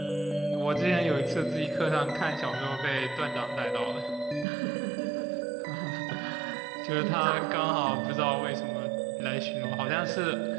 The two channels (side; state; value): left; drops out; at 4.5 s